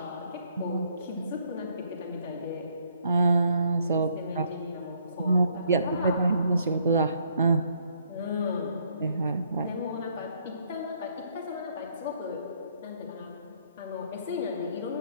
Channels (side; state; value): both; inverted; correlation -0.67